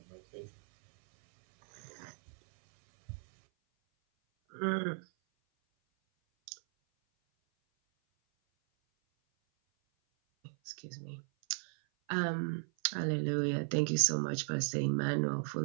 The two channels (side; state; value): left; silent; 54 dB below the other